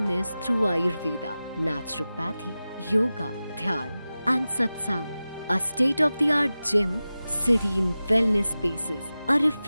through Ayurveda, naturopathy, yoga, dhyan and satsang. A state-of-the-art gym, serene wellness spaces, a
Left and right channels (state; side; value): inverted; both; correlation -0.95